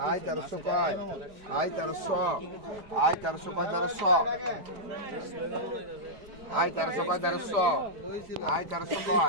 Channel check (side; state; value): left; late; 4.9 ms